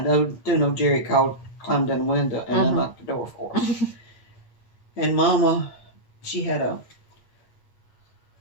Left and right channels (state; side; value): late; right; 8.7 ms